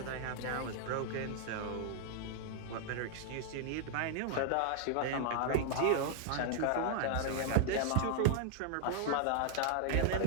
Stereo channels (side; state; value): both; different; correlation 0.00